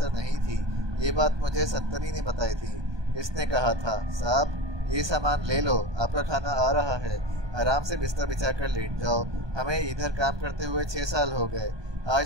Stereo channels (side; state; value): left; late; 1.2 ms